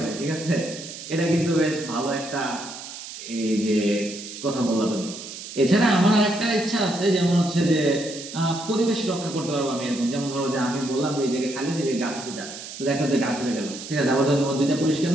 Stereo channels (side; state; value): right; noise; hiss, 11 dB below the sound